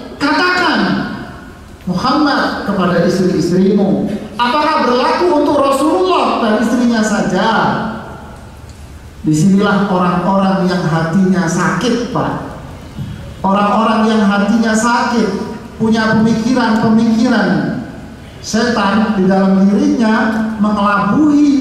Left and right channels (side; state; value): both; identical; correlation 1.00